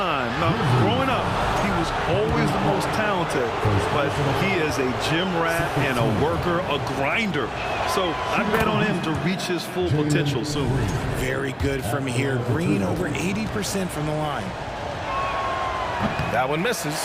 Now, growing up, he was always the most talented, but he is a gym rat and a worker, a grinder. So I bet on him to reach his full potential soon. Very good from here. Green over 80% from the line. That one misses,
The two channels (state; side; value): identical; both; correlation 1.00